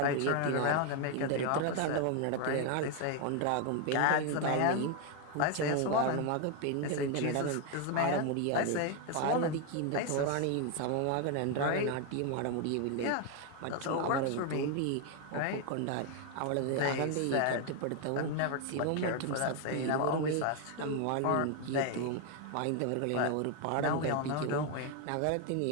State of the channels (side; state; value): both; different; correlation 0.01